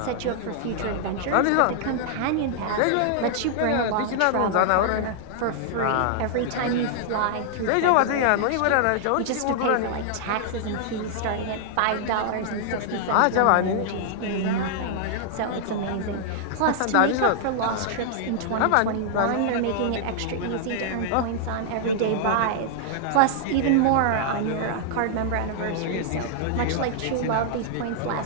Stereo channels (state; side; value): different; both; correlation -0.01